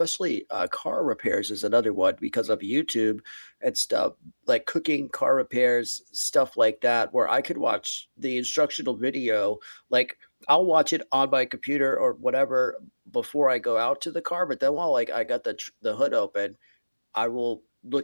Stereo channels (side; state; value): both; inverted; correlation -1.00